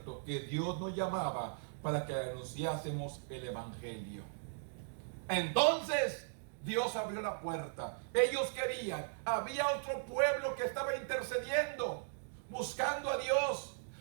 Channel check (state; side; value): silent; left; digital silence